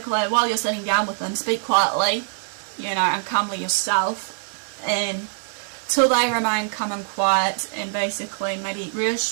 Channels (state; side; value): silent; left; 63 dB below the other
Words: while you're sitting down with them, speak quietly, you know, and calmly yourself, and till they remain calm and quiet, and basically maybe